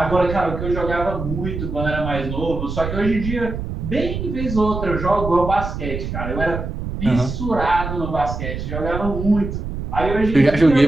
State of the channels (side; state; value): right; noise; rumble, 6 dB below the sound